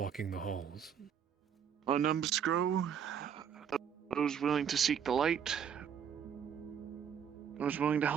the halls. Our numbers grow. Those willing to seek the light. Those willing to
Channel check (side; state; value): left; quieter; 8.0 dB